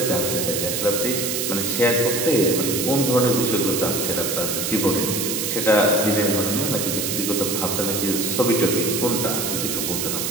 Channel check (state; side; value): noise; right; hiss, 1 dB below the sound